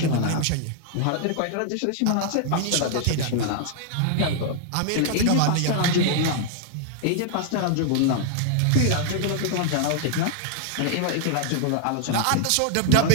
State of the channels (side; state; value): both; different; correlation 0.00